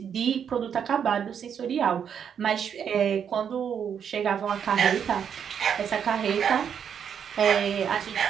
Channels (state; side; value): quieter; left; 7.9 dB